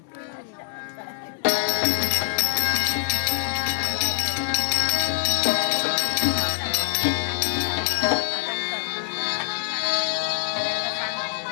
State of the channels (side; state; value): right; silent; 62 dB below the other